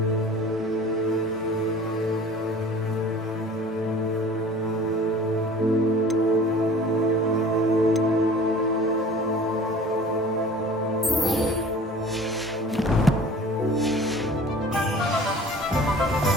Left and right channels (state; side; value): normal; both; correlation 0.45